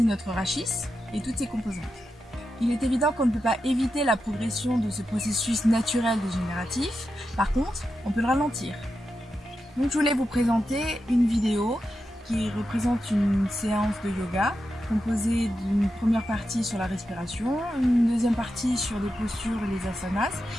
notre rachis et toutes ses composantes. Il est évident qu'on ne peut pas éviter la progression de ce processus naturel dégénératif, par contre, on peut le ralentir. Donc je voulais vous présenter une vidéo qui représente une séance de yoga composée d'une première partie sur la respiration, une deuxième partie sur les postures et les asanas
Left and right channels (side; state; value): both; normal; correlation 0.88